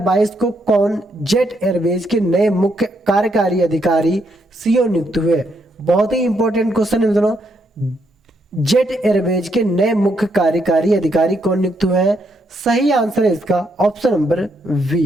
को कौन जेट एयरवेज के नए मुख्य कार्यकारी अधिकारी CEO नियुक्त हुए? बहुत ही इंपॉर्टेंट क्वेश्चन है मित्रों। जेट एयरवेज के नए मुख्य कार्यकारी अधिकारी कौन नियुक्त हुए हैं? सही आंसर है इसका option number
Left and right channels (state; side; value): normal; both; correlation 0.76